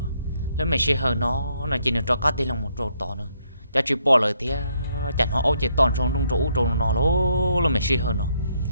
lúc mẹ chỉ hờ nó chỉ được cho các tay lòng một chỗ to nữa cho chỉ bỏ lời tiếc chẳng họ ôi chỉ toàn trong trong chỗ nó lố lúc mẹ chỉ hờ nó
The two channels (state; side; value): inverted; both; correlation -0.73